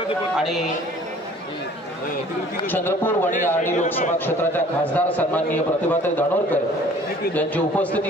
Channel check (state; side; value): normal; both; correlation 0.52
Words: आणि चंद्रपूर वणी आर्णी लोकसभा क्षेत्राच्या खासदार सन्माननीय प्रतिभाताई धानोरकर यांची